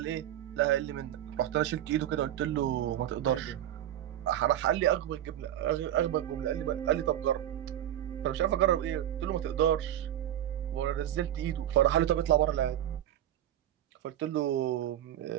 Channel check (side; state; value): left; quieter; 12.0 dB